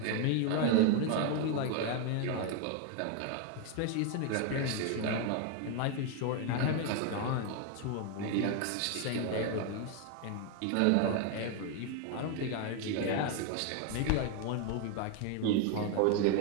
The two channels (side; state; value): both; different; correlation 0.01